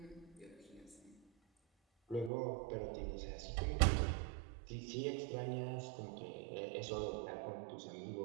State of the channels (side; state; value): left; drops out; at 2.3 s